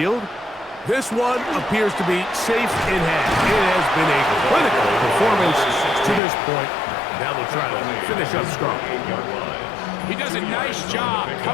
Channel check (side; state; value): right; drops out; at 6.2 s